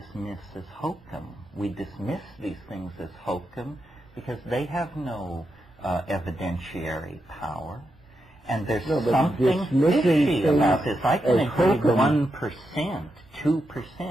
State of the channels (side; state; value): both; normal; correlation 0.85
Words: as hokum. We dismiss these things as hokum because they have no evidentiary power. And there's something fishy about this. I can agree 1%,